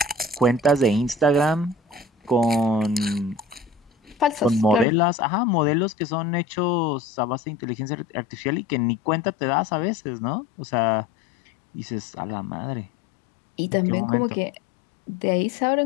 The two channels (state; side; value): drops out; right; at 4.9 s